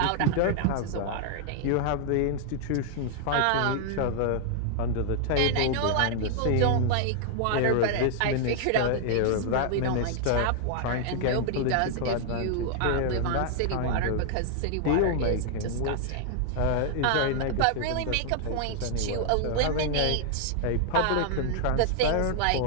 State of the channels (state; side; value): different; both; correlation 0.00